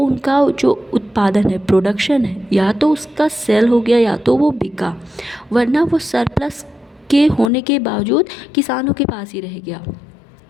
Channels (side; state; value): right; drops out; at 7.5 s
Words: जो उत्पादन है, प्रोडक्शन है, या तो उसका सेल हो गया या तो वो बिका, वरना वो सरप्लस के होने के बावजूद किसानों के पास ही रह गया।